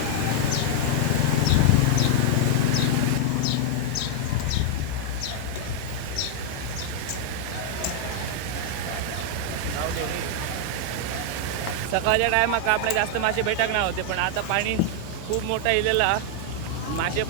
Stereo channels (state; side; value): different; both; correlation 0.00